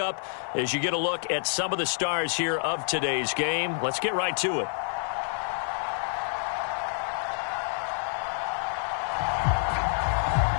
as you get a look at some of the stars here of today's game. Let's get right to it.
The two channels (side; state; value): right; silent; digital silence